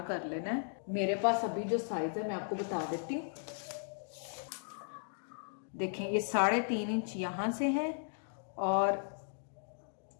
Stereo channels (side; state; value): right; silent; digital silence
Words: कर लेना है। मेरे पास अभी जो साइज है मैं आपको बता देती हूँ। देखें, ये 3.5 इंच यहां से है और